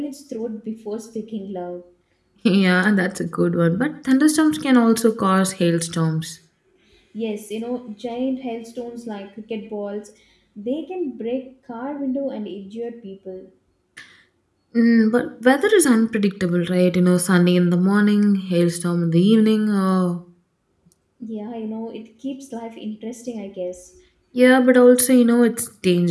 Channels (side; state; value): both; identical; correlation 1.00